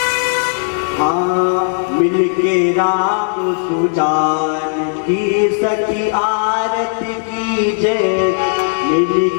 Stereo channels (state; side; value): silent; right; 69 dB below the other